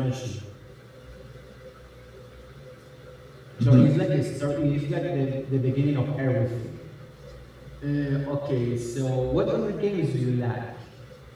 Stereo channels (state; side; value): identical; both; correlation 1.00